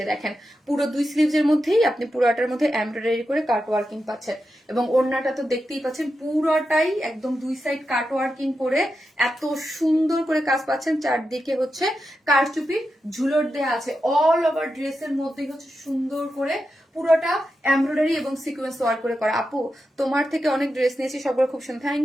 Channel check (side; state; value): both; normal; correlation 0.89